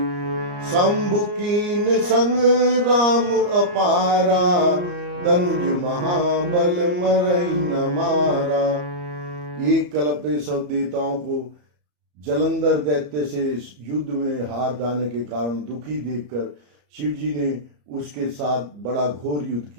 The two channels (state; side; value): late; left; 34 ms